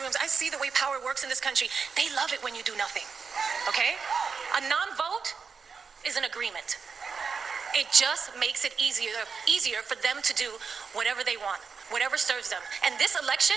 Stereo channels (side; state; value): left; quieter; 5.5 dB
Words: rooms. I see the way power works in this country. They love it when you do nothing, okay? A non-vote is an agreement. It just makes it easier for them to do whatever they want, whatever serves them. And this election